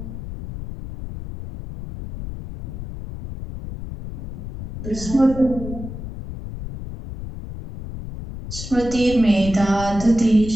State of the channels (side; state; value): left; noise; rumble, 10 dB below the sound